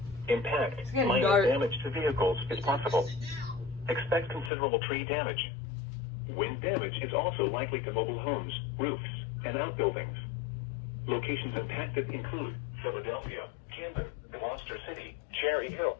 Impact, minor damage to vehicles is possible. Expect considerable tree damage. Wind damage is also likely to mobile homes, roofs, and outbuildings. Locations impacted include Philadelphia, Camden, Gloucester City, Cherry Hill,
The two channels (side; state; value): right; drops out; at 4.5 s